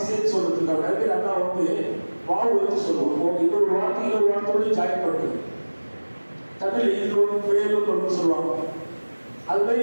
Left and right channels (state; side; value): inverted; both; correlation -1.00